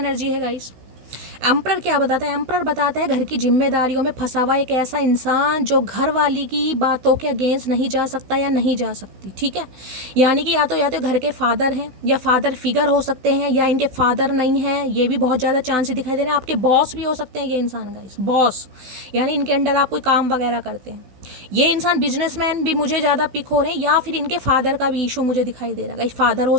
है गाइस। एम्परर क्या बताता है, एम्परर बताता है घर की जिम्मेदारियों में फंसा हुआ एक ऐसा इंसान जो घर वाली की बातों के अगेंस्ट नहीं जा सकता या नहीं जा सकती, ठीक है। यानी कि या तो घर के फादर हैं या फादर फिगर हो सकते हैं, या इनके फादर नहीं हैं, ये भी बहुत ज़्यादा चांस दिखाई दे रहे हैं। आपके बॉस भी हो सकते हैं ये इंसान गाइस, बॉस, यानी इनके अंडर आप कोई काम वगैरह करते हैं। ये इंसान बिजनेसमैन भी मुझे ज़्यादा पिक हो रहे हैं, या फिर इनके फादर का भी इशू मुझे दिखाई दे रहा है। फादर हो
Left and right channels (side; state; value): left; late; 16 ms